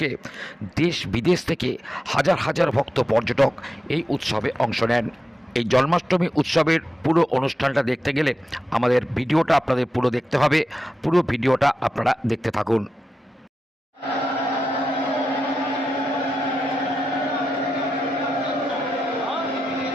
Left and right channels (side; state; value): both; normal; correlation 0.89